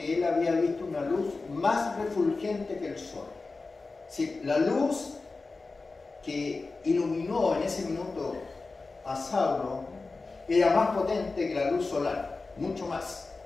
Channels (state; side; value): quieter; right; 3.8 dB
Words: él había visto una luz más refulgente que el sol. Sí, la luz que iluminó en ese minuto a Saulo era más potente que la luz solar, mucho más.